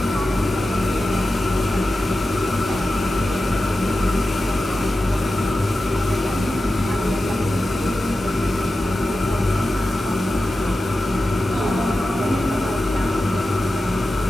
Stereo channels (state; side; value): normal; both; correlation 0.93